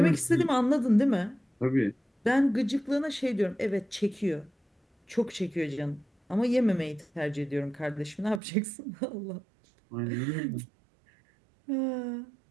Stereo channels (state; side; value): drops out; left; at 8.4 s